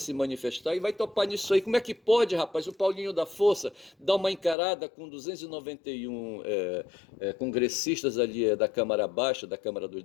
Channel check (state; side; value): drops out; right; at 4.5 s